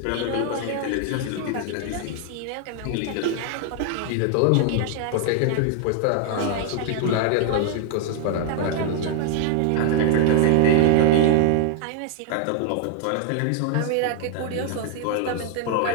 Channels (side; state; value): both; different; correlation 0.00